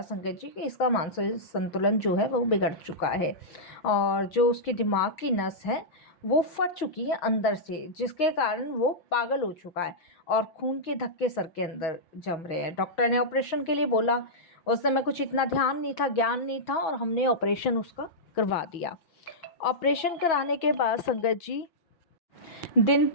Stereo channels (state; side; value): late; right; 6.2 ms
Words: संगत जी कि इसका मानसिक संतुलन जो है वो बिगड़ चुका है, और जो उसके दिमाग की नस है वो फट चुकी है अंदर से, जिसके कारण वो पागल हो चुका है और खून के धक्के सर के अंदर जम रहे हैं। डॉक्टर ने ऑपरेशन के लिए बोला। उस समय कुछ इतना ध्यान नहीं था, ज्ञान नहीं था, और हमने ऑपरेशन उसका करवा दिया। ऑपरेशन कराने के बाद संगत जी दिन